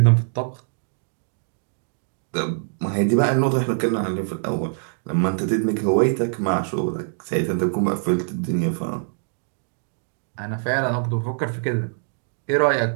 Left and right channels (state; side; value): silent; left; digital silence